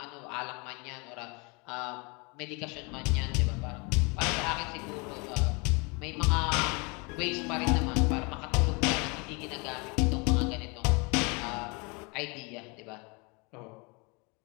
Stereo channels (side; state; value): right; quieter; 30.2 dB